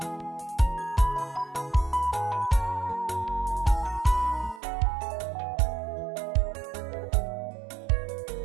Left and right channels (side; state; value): left; drops out; at 4.6 s